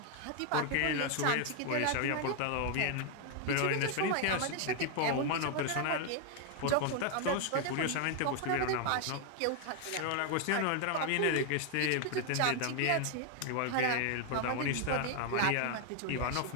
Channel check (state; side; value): different; both; correlation 0.01